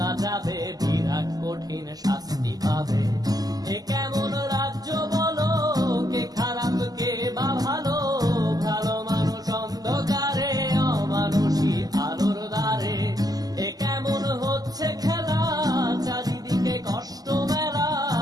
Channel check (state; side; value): late; left; 0.18 ms